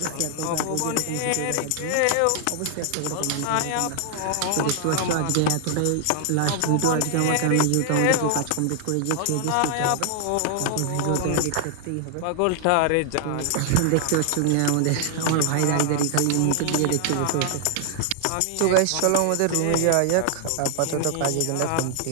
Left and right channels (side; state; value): both; different; correlation 0.00